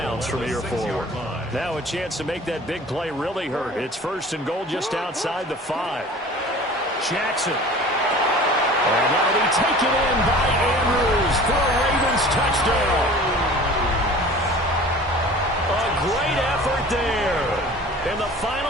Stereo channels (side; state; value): both; normal; correlation 0.43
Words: from here forward. Now a chance to make that big play really hurt. It's first and goal just outside the 5. Jackson. And that'll be taken in by Andrews for a Ravens touchdown. A great effort there in the